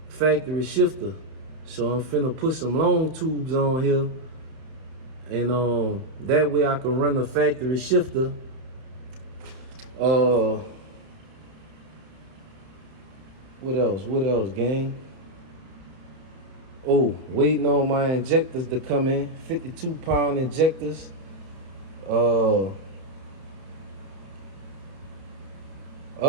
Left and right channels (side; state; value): left; late; 31 ms